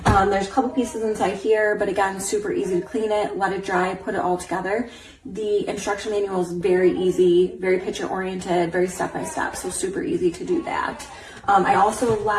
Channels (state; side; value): identical; both; correlation 1.00